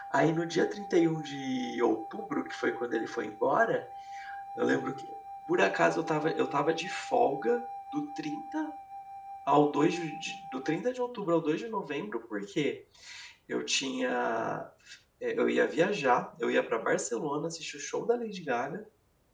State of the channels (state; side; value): identical; both; correlation 1.00